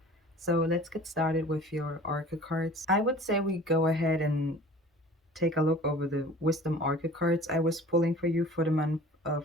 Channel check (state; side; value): normal; both; correlation 0.46